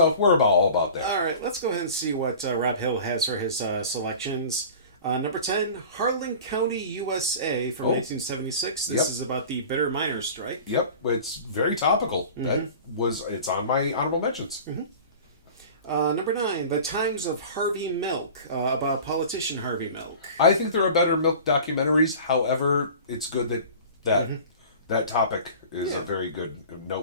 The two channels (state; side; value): inverted; both; correlation -0.40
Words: we're all about that. All right, let's go ahead and see what Rob Hill has for his selections. Number 10, Harlan County, USA from 1976. This is about the bitter miners' strike. Yep, it's very topical. Mm-hmm. It's on my honorable mentions. Mm-hmm. Number 9, The Times of Harvey Milk, about politician Harvey Milk. I think there are better milk documentaries. However, it's good that topic is a very good,